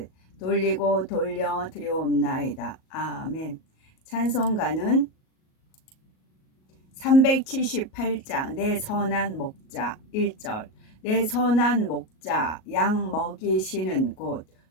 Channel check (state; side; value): late; right; 38 ms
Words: 돌리고 돌려 드려옵나이다. 아멘. 찬송가는 378장 내 선한 목자 1절. 내 선한 목자 양 먹이시는 곳